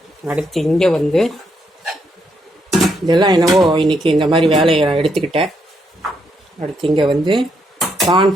அடுத்து இங்கே இதெல்லாம் என்னவோ இன்றைக்கி இந்த மாதிரி வேலையை எடுத்துக்கிட்டேன். அடுத்து இங்கே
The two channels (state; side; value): normal; both; correlation 0.77